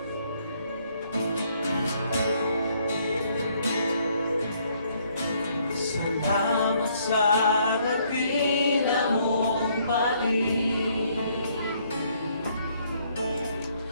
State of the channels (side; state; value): both; inverted; correlation -0.67